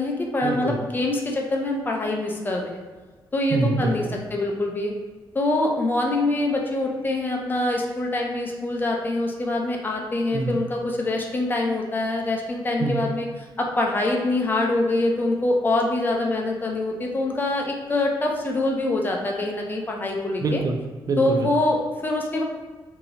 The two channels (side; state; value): both; normal; correlation 0.73